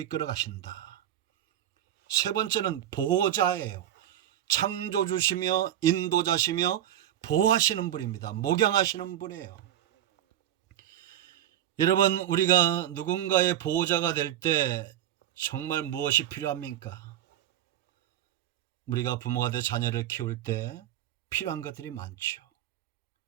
가신다. 세 번째는 보호자예요. 창조주시며 인도자시며 보호하시는 분입니다. 목양하시는 분이에요. 여러분, 우리가 누군가의 보호자가 될 때 정말 무엇이 필요합니까? 우리가 부모가 돼 자녀를 키울 때 필요한 것들이 많죠.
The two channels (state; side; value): quieter; left; 11.8 dB